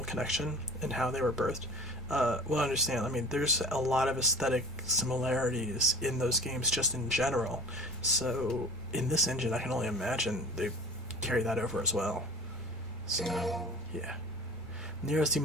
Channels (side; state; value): both; normal; correlation 0.39